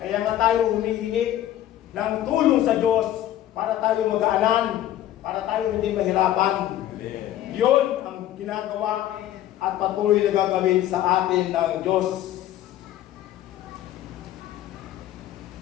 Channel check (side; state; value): right; quieter; 12.7 dB